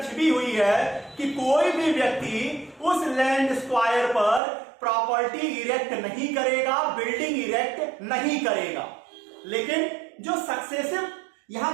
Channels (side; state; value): left; drops out; at 4.4 s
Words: छिपी हुई है कि कोई भी व्यक्ति उस लैंड स्क्वायर पर प्रॉपर्टी इरेक्ट नहीं करेगा, बिल्डिंग इरेक्ट नहीं करेगा। लेकिन जो सक्सेसिव यहां